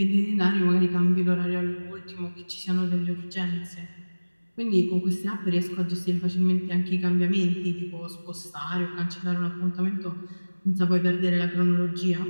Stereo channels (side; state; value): both; inverted; correlation -1.00